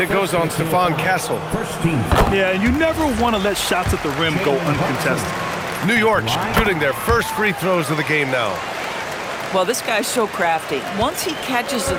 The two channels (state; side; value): identical; both; correlation 1.00